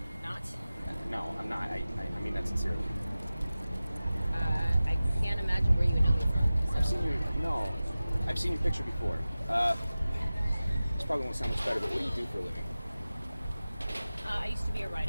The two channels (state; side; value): inverted; both; correlation -0.96